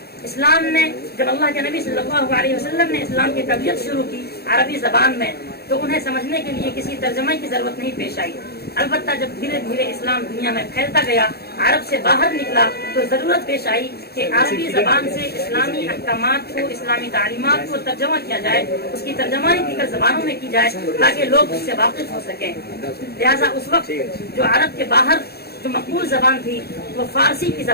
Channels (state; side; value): late; right; 0.46 ms